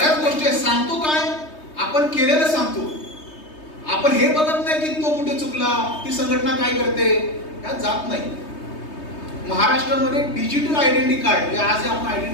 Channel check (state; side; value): late; right; 3.2 ms